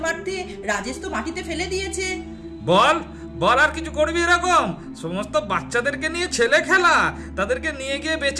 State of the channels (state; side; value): identical; both; correlation 1.00